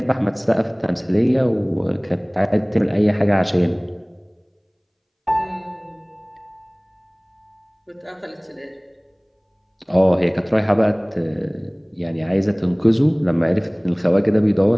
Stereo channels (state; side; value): identical; both; correlation 1.00